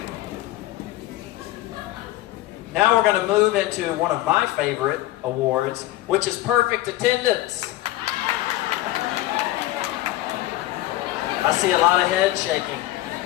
Now we're going to move into one of my favorite awards, which is perfect attendance. I see a lot of head shaking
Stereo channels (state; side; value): quieter; right; 16.2 dB